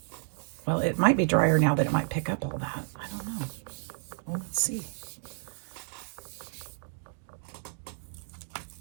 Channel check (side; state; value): left; silent; digital silence